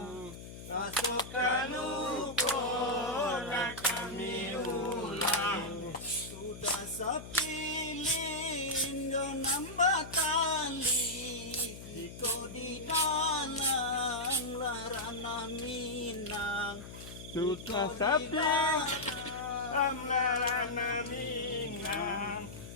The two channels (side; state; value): left; noise; hum, 13 dB below the sound